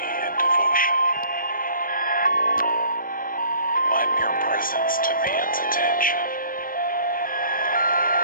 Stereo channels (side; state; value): right; late; 0.41 ms